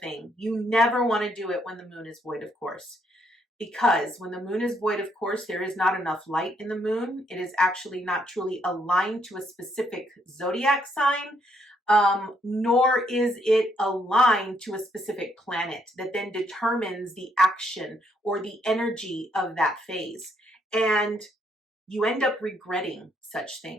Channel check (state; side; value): normal; both; correlation 0.72